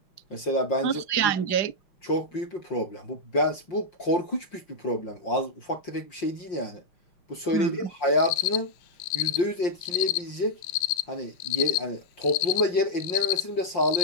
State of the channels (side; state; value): right; late; 5.6 ms